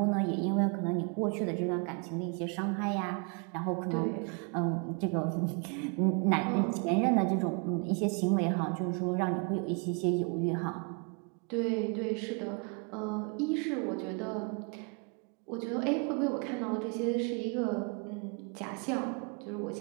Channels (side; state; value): left; quieter; 35.5 dB